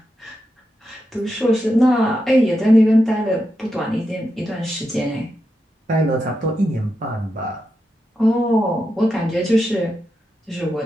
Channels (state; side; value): normal; both; correlation 0.86